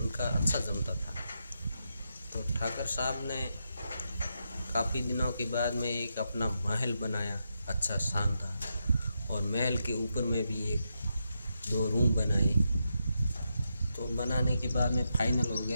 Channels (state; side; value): inverted; both; correlation -0.84